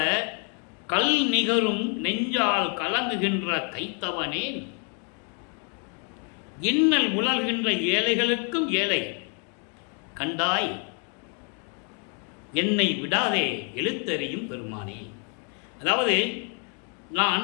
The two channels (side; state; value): right; quieter; 39.6 dB